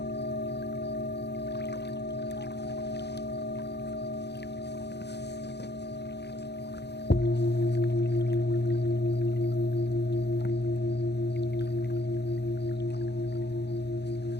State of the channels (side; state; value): right; late; 0.49 ms